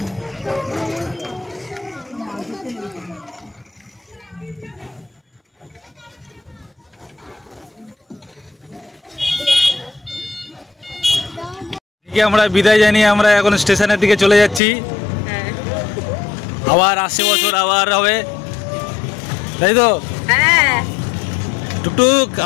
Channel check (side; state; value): right; drops out; at 14.6 s